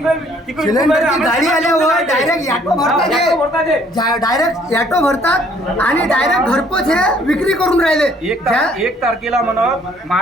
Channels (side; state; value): both; normal; correlation 0.61